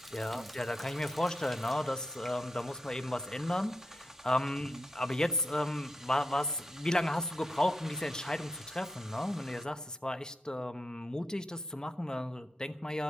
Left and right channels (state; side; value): normal; both; correlation 0.85